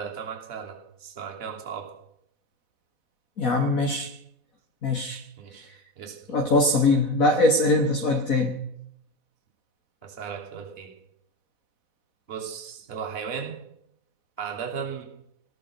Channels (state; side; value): late; right; 4.1 ms